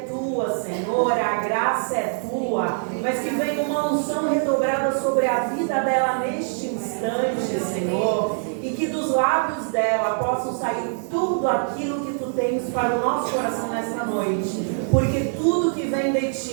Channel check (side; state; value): left; silent; digital silence